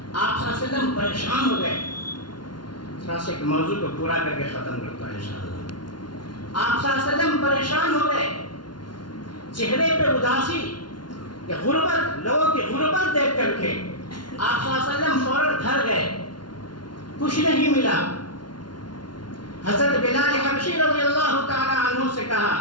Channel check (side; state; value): right; late; 0.71 ms